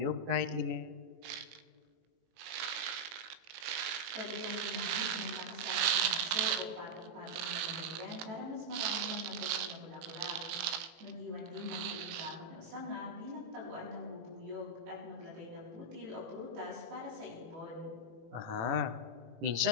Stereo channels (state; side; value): late; left; 18 ms